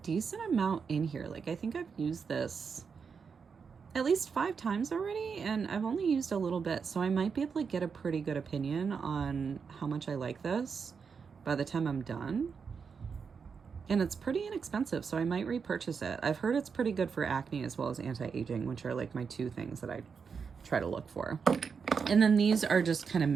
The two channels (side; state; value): left; quieter; 5.9 dB